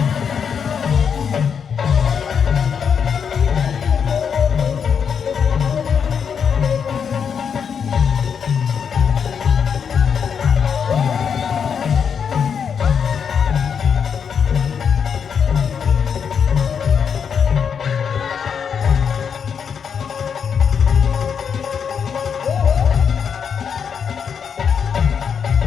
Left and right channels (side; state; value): right; quieter; 7.0 dB